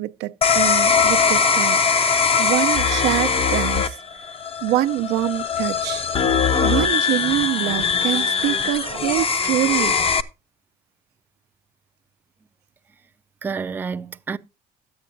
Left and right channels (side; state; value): both; normal; correlation 0.06